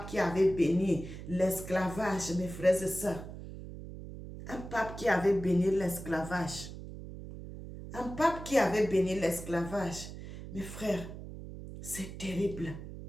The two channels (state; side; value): noise; right; hum, 11 dB below the sound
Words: qui avait béni l'esclavage, mes frères et sœurs. Un pape qui avait béni l'esclavage. Un pape qui avait béni l'esclavage. Mes frères, c'est terrible.